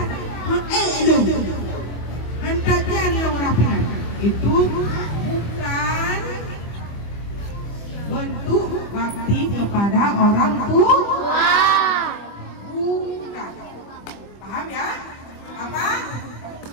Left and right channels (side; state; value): right; late; 25 ms